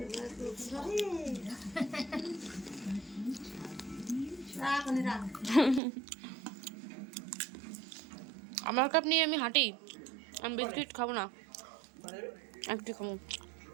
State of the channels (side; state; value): left; drops out; at 5.8 s